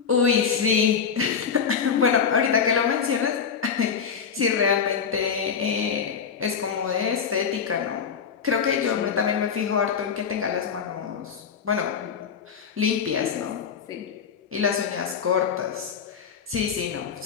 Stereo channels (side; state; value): right; quieter; 6.7 dB